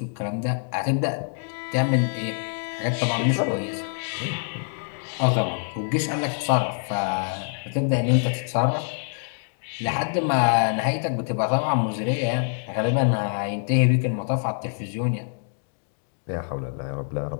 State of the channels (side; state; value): right; silent; digital silence